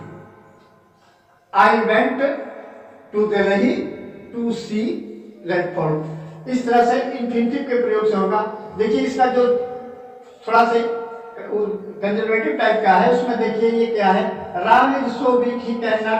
I went to Delhi to see red fort. इस तरह से इंफिनिटिव के प्रयोग से होगा। देखिए इसका जो थोड़ा से कंजर्वेटिव टाइप का है उसमें देखिए ये क्या है, Ram is so weak he can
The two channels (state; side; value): identical; both; correlation 1.00